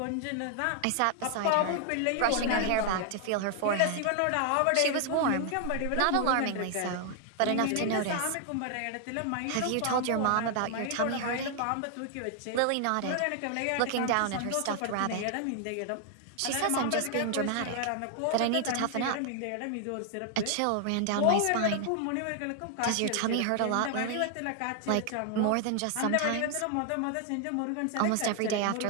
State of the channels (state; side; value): different; both; correlation 0.00